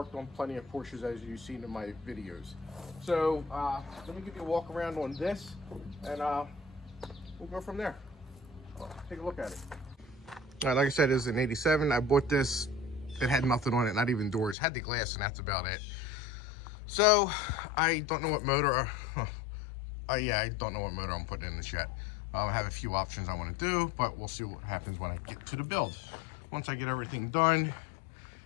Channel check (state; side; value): drops out; right; at 14.6 s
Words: on plenty of Porsches as you've seen in my videos. So let me give you a walk around on this, and we'll go from there. Take a look at it. All right, like I said, it's an 87. I bought this. It had nothing on it, not even doors. It had the glass, and that's about it. So I don't know what motor. Yeah, I don't know what motor I'm putting in this yet. I have a few options I want to do, but we'll see what happens when I get to the build. Once I get everything done,